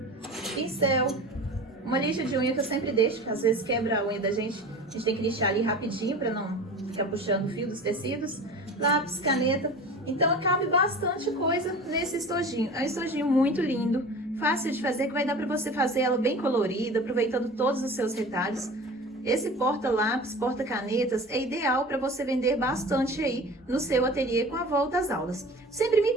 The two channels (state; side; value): normal; both; correlation 0.37